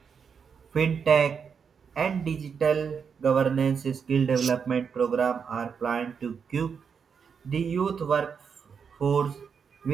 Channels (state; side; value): quieter; left; 6.4 dB